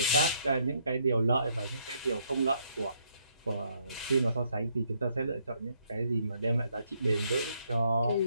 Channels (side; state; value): both; inverted; correlation -0.71